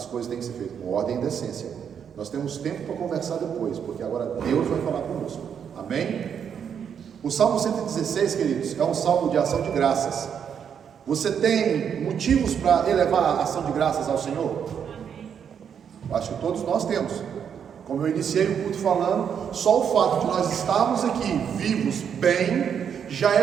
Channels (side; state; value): left; quieter; 7.8 dB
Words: coisas têm que ser feitas com ordem e decência. Nós temos tempo para conversar depois, porque agora Deus vai falar conosco. Amém? O Salmo 116, queridos, é um salmo de ação de graças. Você tem motivos para elevar a ação de graças ao Senhor? Acho que todos nós temos. Como eu iniciei o culto falando, só o fato de nós estarmos aqui vivos, bem, já